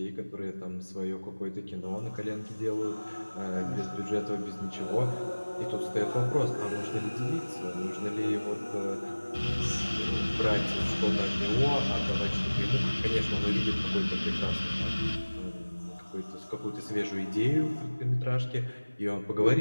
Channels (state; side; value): inverted; both; correlation -1.00